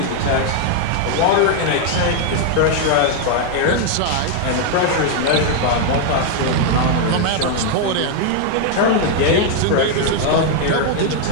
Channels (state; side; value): different; both; correlation 0.00